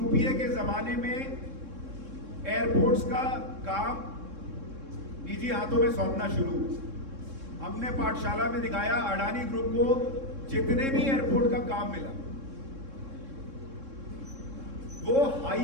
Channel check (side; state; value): left; late; 3.7 ms